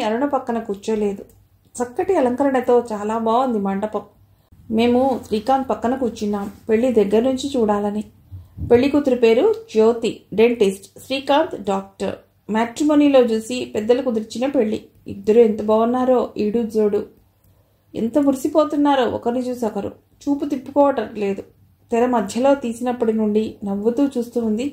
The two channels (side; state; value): both; identical; correlation 1.00